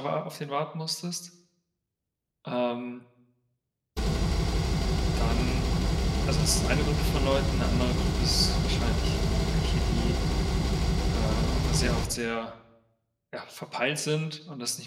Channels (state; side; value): identical; both; correlation 1.00